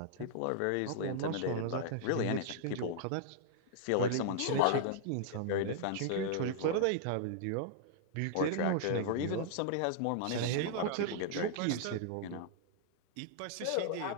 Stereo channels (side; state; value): both; different; correlation -0.01